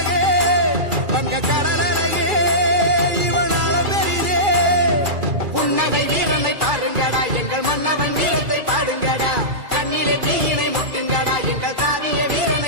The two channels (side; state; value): left; late; 2.4 ms